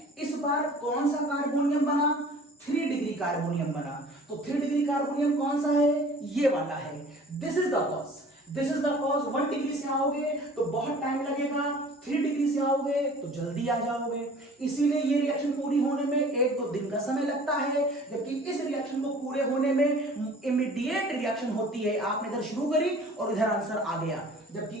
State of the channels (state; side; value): normal; both; correlation 0.47